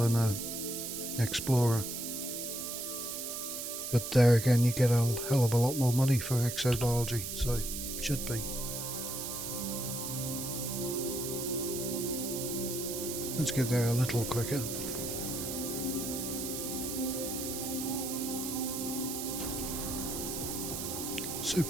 an explorer. But there again, you get a hell of a lot more money for exobiology, so it should be. Let's get there a little quicker.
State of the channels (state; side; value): noise; right; hiss, 5 dB below the sound